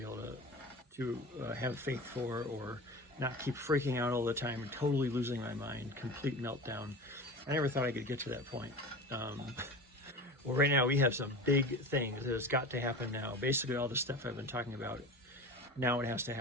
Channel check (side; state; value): both; normal; correlation 0.32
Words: to have faith for, or not keep freaking out all the time and totally losing my mind, complete meltdown. I never thought I could get to that point. Well, right now we have some big things that has got to happen now. Basically, all the stuff I've been talking about, now it has to